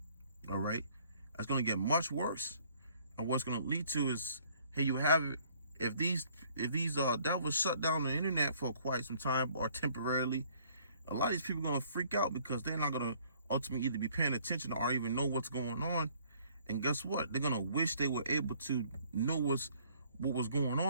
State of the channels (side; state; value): both; inverted; correlation -0.60